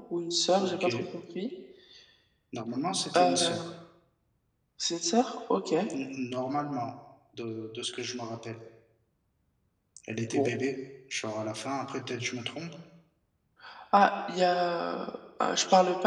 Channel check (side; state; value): both; identical; correlation 1.00